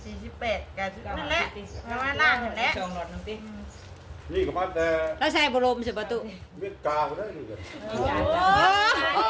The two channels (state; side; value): identical; both; correlation 1.00